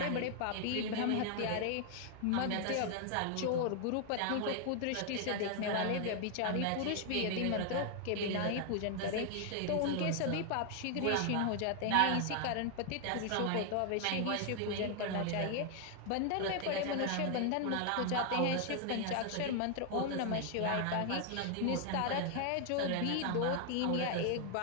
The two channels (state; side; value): different; both; correlation 0.00